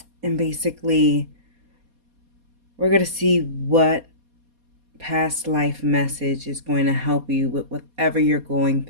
basically, we're going to see what past life message is going to help you with whatever you're going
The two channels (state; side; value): late; left; 4.2 ms